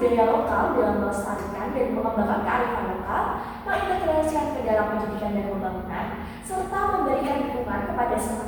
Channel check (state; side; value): identical; both; correlation 1.00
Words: lokal dalam melestarikan dan mengembangkan kearifan lokal, mengintegrasikan ke dalam pendidikan dan pembangunan, serta memberikan dukungan kepada